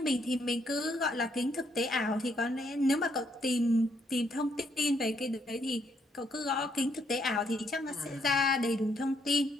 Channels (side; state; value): both; normal; correlation 0.73